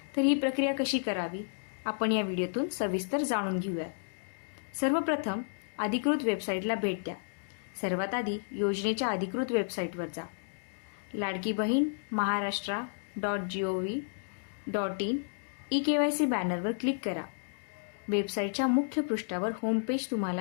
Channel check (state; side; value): silent; right; digital silence